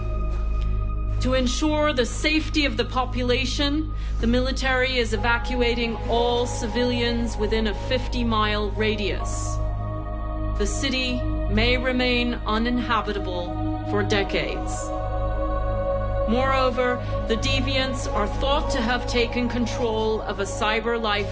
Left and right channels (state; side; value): identical; both; correlation 1.00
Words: To ensure the safety of the population, the military is evacuating all civilians within a 50-mile radius. The city may remain uninhabitable for decades. Moreover, the deviants are thought to have taken control of a cyber